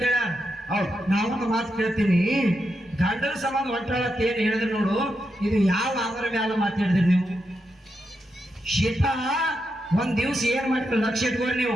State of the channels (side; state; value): both; normal; correlation 0.85